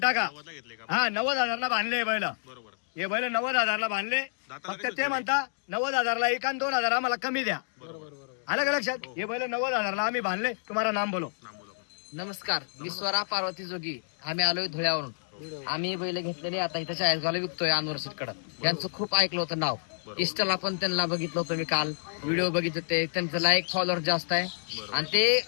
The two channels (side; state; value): right; silent; digital silence